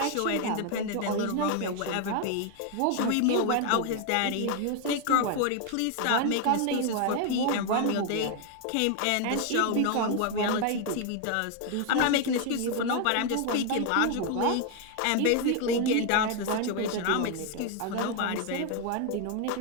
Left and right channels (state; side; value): different; both; correlation 0.01